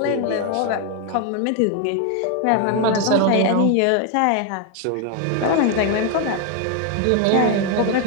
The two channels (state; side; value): different; both; correlation 0.01